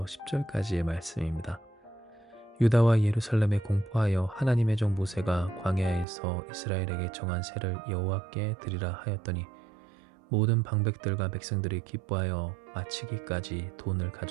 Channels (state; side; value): drops out; left; at 6.1 s